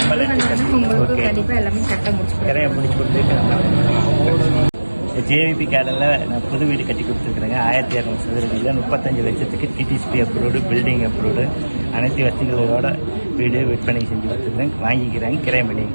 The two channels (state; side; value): inverted; both; correlation -1.00